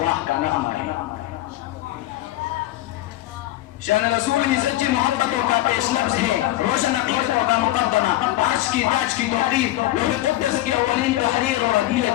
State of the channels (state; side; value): quieter; right; 15.9 dB